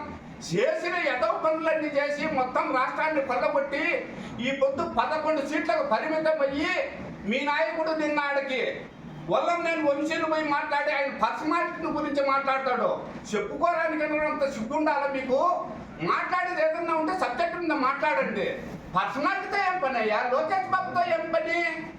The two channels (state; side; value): identical; both; correlation 1.00